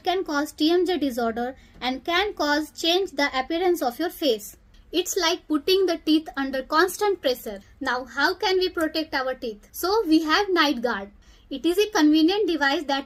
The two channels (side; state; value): both; identical; correlation 1.00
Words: can cause TMJ disorder and can cause change the appearance of your face. It's like putting the teeth under constant pressure. Now, how can we protect our teeth? So, we have night guard. It is a convenient device